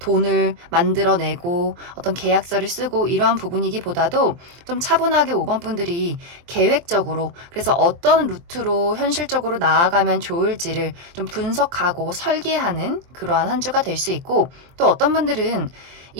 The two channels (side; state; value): left; late; 23 ms